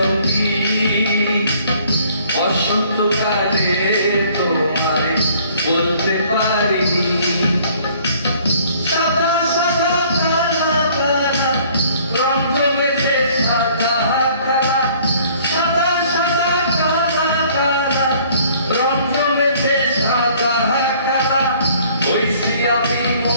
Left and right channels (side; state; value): both; inverted; correlation -0.57